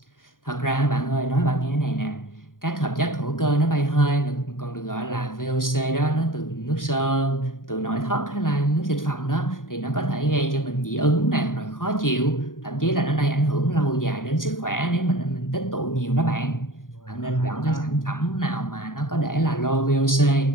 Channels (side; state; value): right; late; 0.90 ms